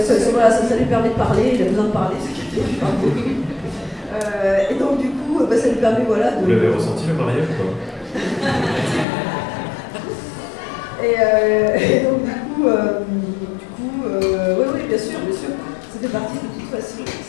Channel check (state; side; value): drops out; right; at 9.1 s